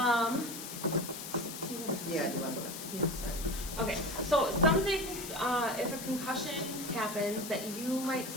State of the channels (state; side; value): noise; left; hiss, 9 dB below the sound